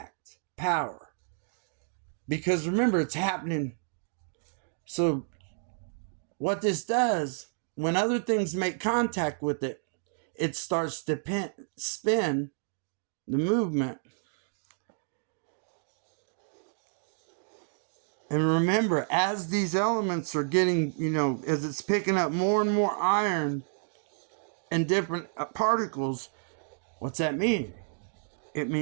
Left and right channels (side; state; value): left; silent; digital silence